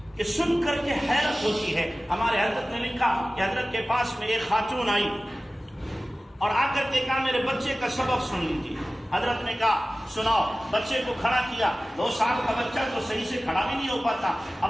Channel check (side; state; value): both; normal; correlation 0.97